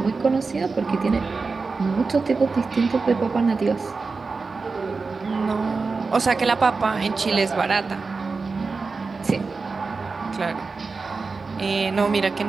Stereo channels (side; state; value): left; quieter; 4.3 dB